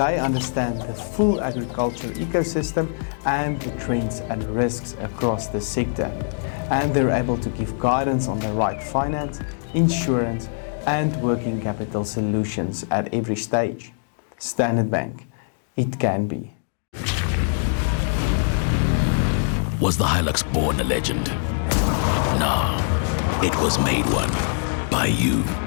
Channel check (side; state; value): right; silent; digital silence